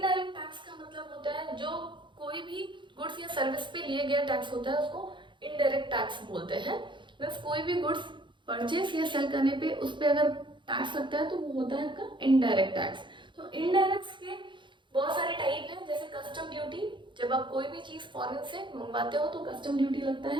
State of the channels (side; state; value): left; late; 0.23 ms